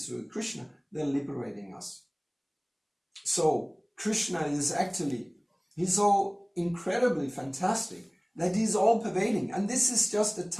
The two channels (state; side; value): identical; both; correlation 1.00